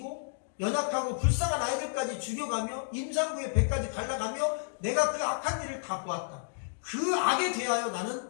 연약하고 불쌍한 아이들까지 죽여가며 임산부의 배까지 갈라가며 내가 그 악한 일을 다 보았다. 그 악에 대하여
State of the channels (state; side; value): silent; right; digital silence